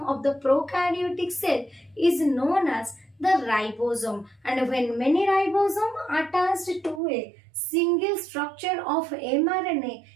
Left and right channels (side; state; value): left; drops out; at 7.0 s